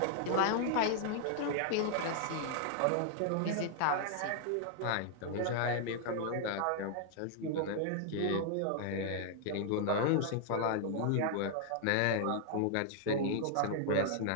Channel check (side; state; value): both; different; correlation 0.00